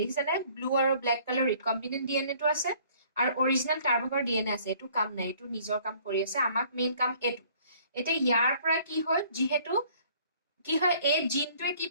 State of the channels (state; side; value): inverted; both; correlation -0.57